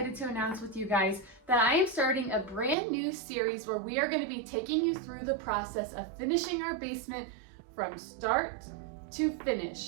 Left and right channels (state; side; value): drops out; left; at 2.8 s